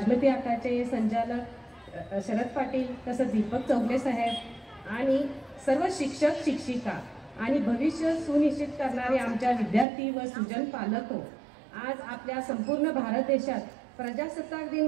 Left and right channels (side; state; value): left; drops out; at 9.9 s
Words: आकाचे संचालक शरद पाटील, तसंच दीपक चौगले साहेब आणि सर्व शिक्षक शिक्षिका आणि भविष्य सुनिश्चित करणारे आमच्या विद्यार्थी व सुजन पालक, आज आपल्या संपूर्ण भारत देशात प्रजासत्ताक दिन